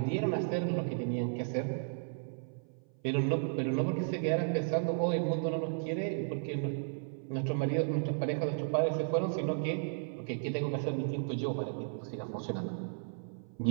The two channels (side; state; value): left; silent; 55 dB below the other